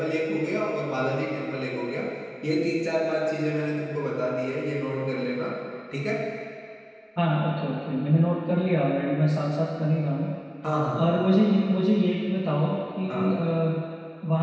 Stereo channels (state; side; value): identical; both; correlation 1.00